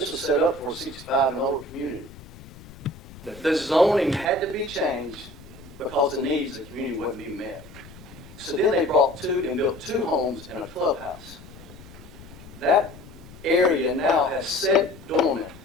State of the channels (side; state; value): left; noise; rumble, 18 dB below the sound